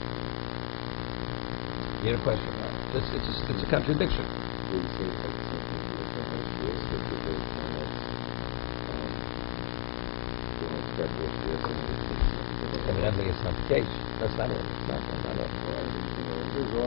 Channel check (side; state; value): right; silent; digital silence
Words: You had a question, right? It's a contradiction. Evidently, it's not the case. That's not it. It's not it.